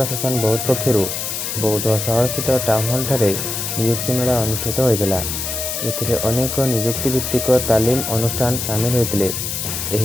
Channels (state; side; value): noise; left; hiss, 3 dB below the sound